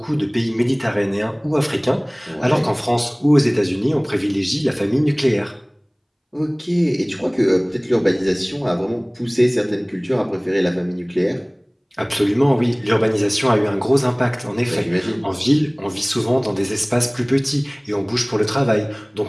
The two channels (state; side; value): identical; both; correlation 1.00